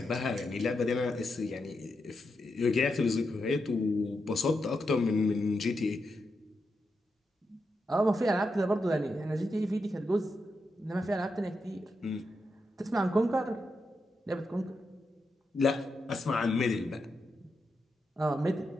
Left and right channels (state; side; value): normal; both; correlation 0.85